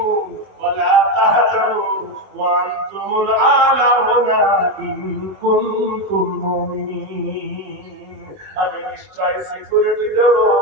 ওয়ালা তাহজানু ওয়া আনতুমুল আ'লাউনা ইন কুনতুম মুমিনিন। আমি নিশ্চয় সিকিউরিটি দেব,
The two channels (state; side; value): late; left; 21 ms